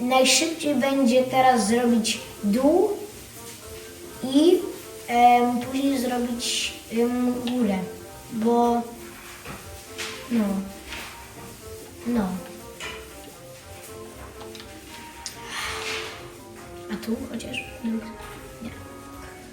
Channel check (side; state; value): both; identical; correlation 1.00